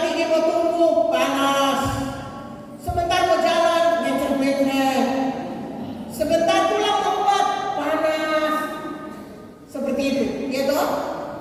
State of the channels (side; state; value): both; identical; correlation 1.00